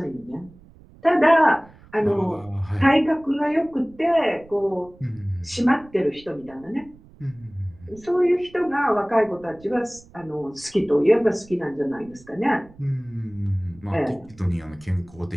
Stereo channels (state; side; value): noise; right; rumble, 24 dB below the sound